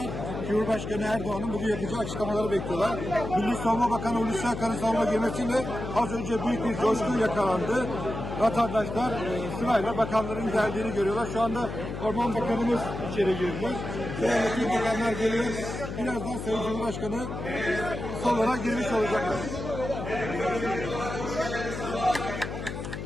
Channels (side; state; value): left; noise; hum, 7 dB below the sound